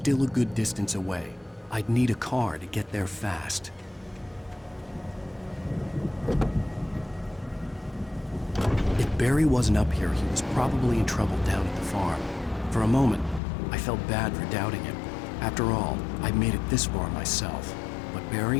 a good distance away. I'd need a car to get there fast. If Barry wasn't up here, he was probably in trouble down at the farm. For a moment, I felt bad for doubting him. After all, I'd made it this far myself. But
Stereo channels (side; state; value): right; drops out; at 13.4 s